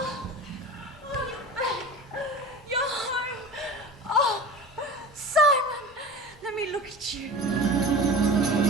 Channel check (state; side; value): normal; both; correlation 0.34